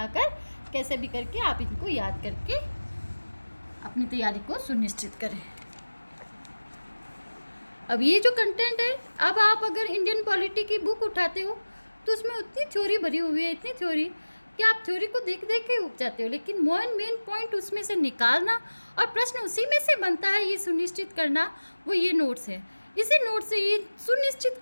कैसे भी करके आप इनको याद करके अपनी तैयारी को सुनिश्चित करें। अब ये जो कंटेंट है, अब आप अगर इंडियन पॉलिटी की बुक उठाते हो तो उसमें उतनी थ्योरी भरी हुई है, इतनी थ्योरी कि आप थ्योरी को देख देख के उग जाते हो, लेकिन मेन पॉइंट उसमें से निकालना और प्रश्न उसी में से बनता है, ये सुनिश्चित करना, वो ये नोट्स है। इसी नोट से ये सुनिश्चित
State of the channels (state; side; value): inverted; both; correlation -1.00